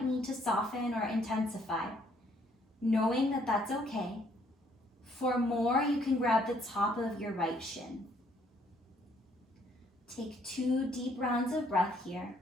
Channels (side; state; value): both; normal; correlation 0.66